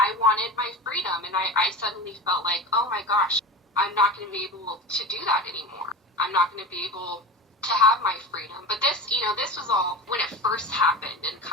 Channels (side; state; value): both; normal; correlation 0.28